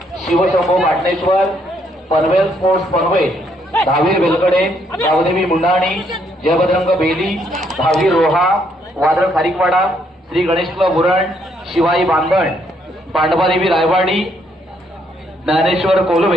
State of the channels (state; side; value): normal; both; correlation 0.71